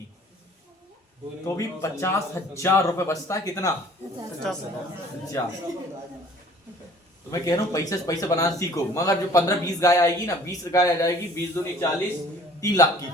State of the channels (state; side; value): normal; both; correlation 0.51